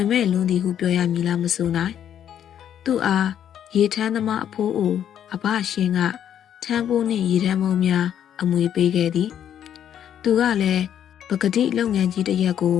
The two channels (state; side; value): quieter; right; 9.7 dB